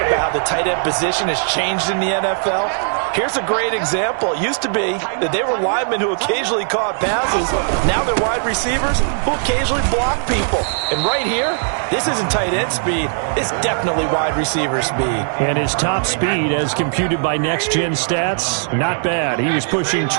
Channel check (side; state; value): left; silent; digital silence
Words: about how the tight end position has changed in the NFL. Here's a great example. It used to be that they were linemen who occasionally caught passes. Now they're wide receivers who occasionally block people. And right here, this isn't tight end speed. It's definitely wide receiver speed. And his top speed, as computed by Next Gen Stats, not bad. He was pushing